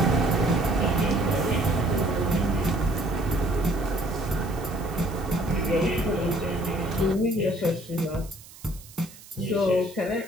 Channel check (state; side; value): noise; right; hiss, 20 dB below the sound